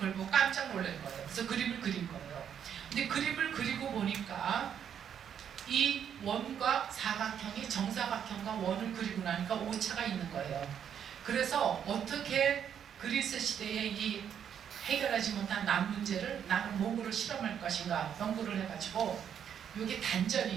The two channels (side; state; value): left; quieter; 8.6 dB